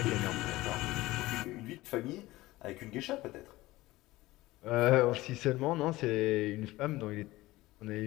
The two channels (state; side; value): quieter; right; 18.5 dB